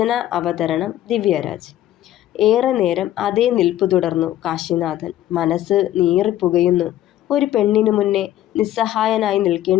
അവതരണം ദിവ്യരാജ്. ഏറെ നേരം അതേ നിൽപ്പു തുടർന്നു കാശിനാഥൻ. മനസ്സ് നീറിപ്പുകയുന്നു. ഒരു പെണ്ണിനു മുന്നേ നിസ്സഹായനായി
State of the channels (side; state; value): right; quieter; 13.1 dB